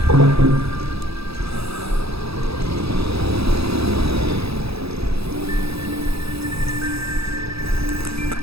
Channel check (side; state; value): left; late; 0.77 ms